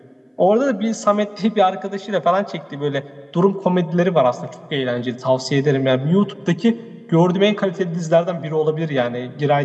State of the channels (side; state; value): both; identical; correlation 1.00